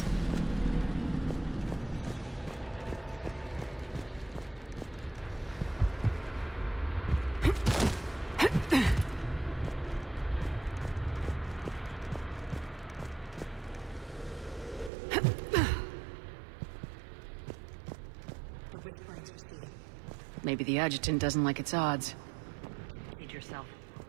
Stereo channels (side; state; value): left; drops out; at 14.9 s